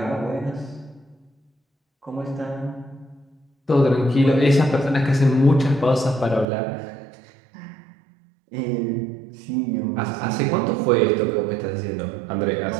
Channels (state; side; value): drops out; left; at 6.5 s